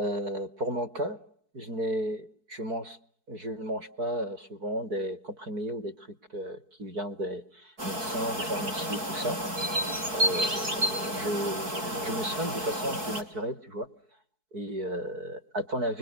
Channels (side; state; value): left; late; 4.6 ms